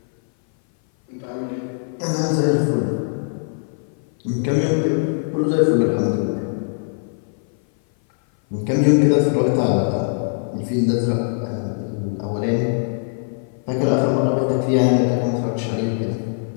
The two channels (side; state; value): right; silent; 58 dB below the other